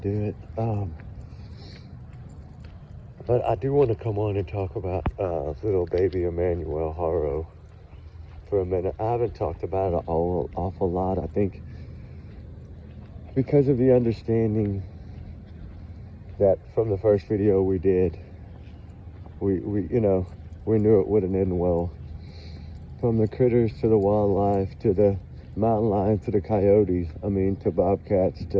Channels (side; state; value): both; identical; correlation 1.00